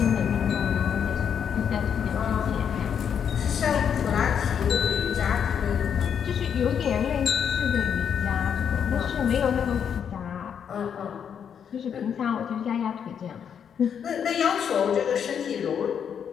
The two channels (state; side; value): quieter; right; 7.9 dB